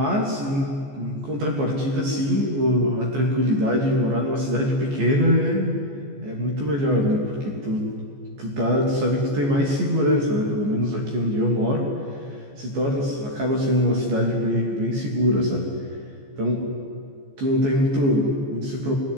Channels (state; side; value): late; left; 14 ms